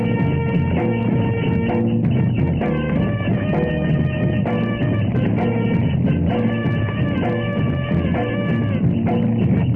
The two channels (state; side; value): identical; both; correlation 1.00